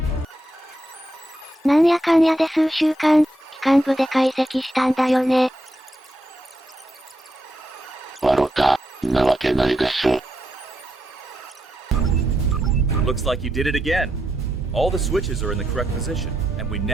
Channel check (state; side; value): normal; both; correlation 0.82